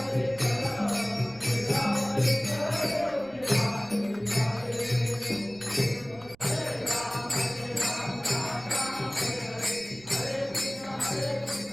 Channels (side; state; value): right; noise; rumble, 25 dB below the sound